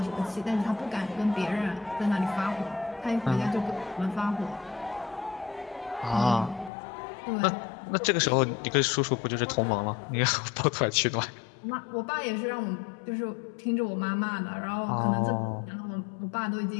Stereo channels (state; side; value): drops out; right; at 6.7 s